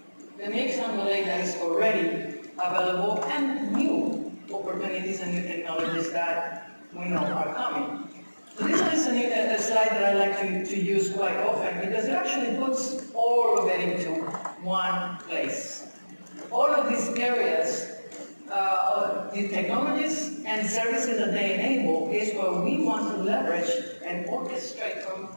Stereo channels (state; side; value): inverted; both; correlation -1.00